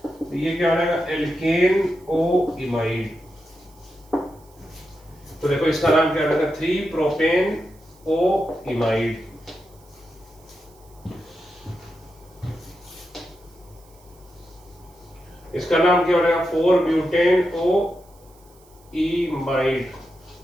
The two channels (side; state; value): right; noise; hiss, 29 dB below the sound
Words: ये क्या हो जाएगा? एल्केन ओ इमाइड। तो देखो इसका नाम क्या रहेगा? 3 प्रोपेन ओ इमाइड। इसका नाम क्या हो रहेगा? 4 ब्यूटेन ओ इमाइड,